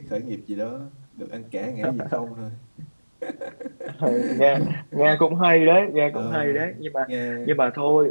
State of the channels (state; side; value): inverted; both; correlation -1.00